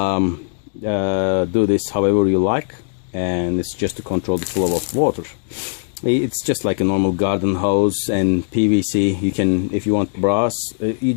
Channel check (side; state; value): right; silent; digital silence